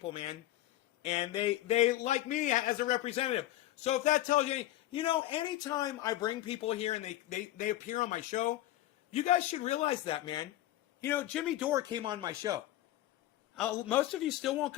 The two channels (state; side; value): quieter; right; 14.6 dB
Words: man. And they like me as a representative. So if that tells you, you know, anytime I bring people here and they appear on my show, you guys should realize that, man. You know, Jimmy Dore came on my show. Most of you still won't